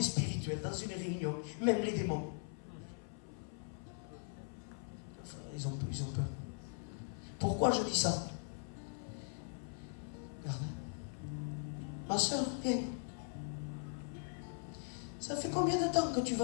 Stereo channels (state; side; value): silent; right; 51 dB below the other